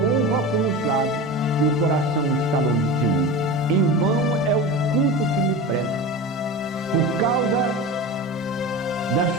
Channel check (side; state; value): both; normal; correlation 0.29